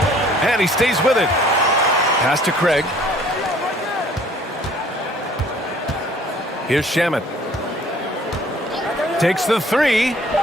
And he stays with it. Pass to Craig. Here's Shaman. Takes the three.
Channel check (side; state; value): both; normal; correlation 0.55